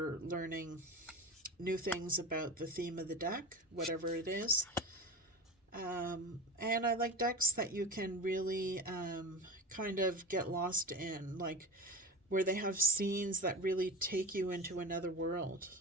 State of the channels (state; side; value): normal; both; correlation 0.28